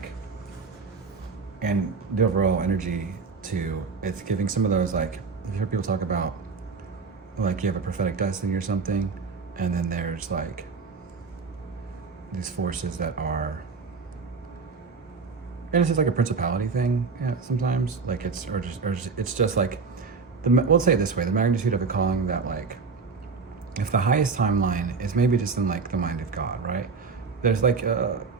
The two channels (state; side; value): quieter; left; 4.9 dB